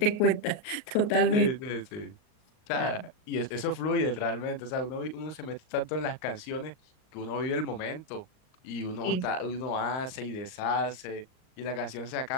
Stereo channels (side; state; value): right; late; 39 ms